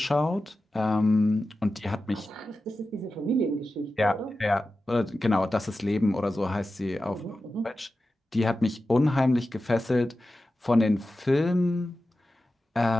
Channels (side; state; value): both; normal; correlation 0.93